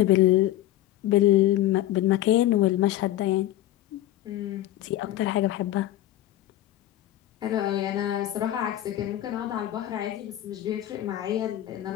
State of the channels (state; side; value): quieter; right; 13.9 dB